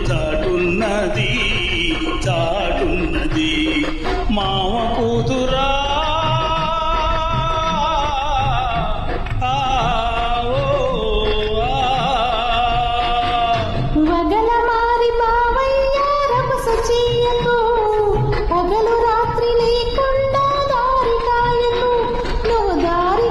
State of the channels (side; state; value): both; identical; correlation 1.00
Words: చాటున్నది చాటున్నది. మావ కూతురా పగలు రాత్రి లేకుండా దారి కాయకు, నువ్వు దారి